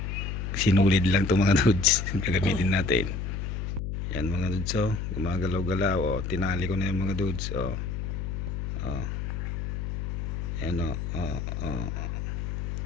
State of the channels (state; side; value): noise; left; hum, 3 dB below the sound